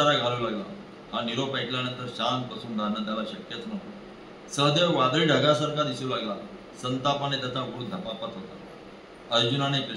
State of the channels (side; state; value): both; identical; correlation 1.00